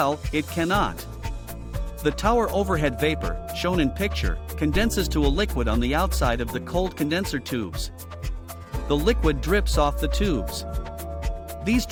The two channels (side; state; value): both; identical; correlation 1.00